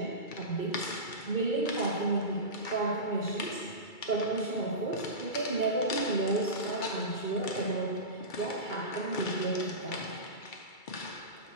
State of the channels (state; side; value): late; right; 2.3 ms